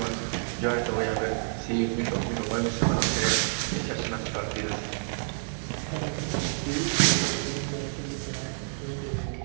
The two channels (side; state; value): left; silent; digital silence